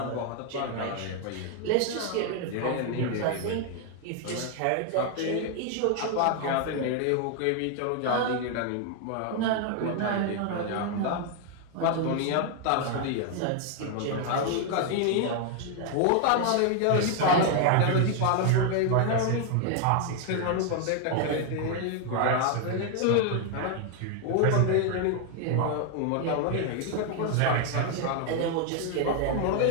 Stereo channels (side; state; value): both; different; correlation 0.00